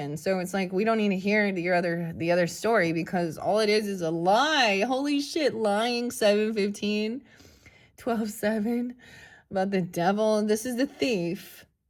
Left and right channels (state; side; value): identical; both; correlation 1.00